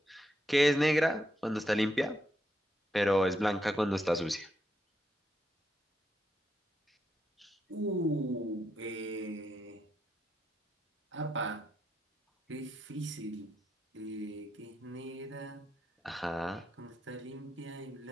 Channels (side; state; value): both; normal; correlation 0.81